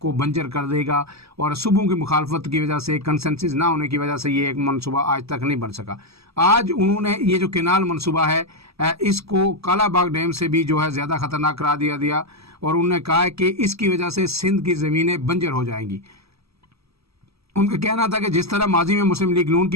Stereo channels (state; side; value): late; left; 0.78 ms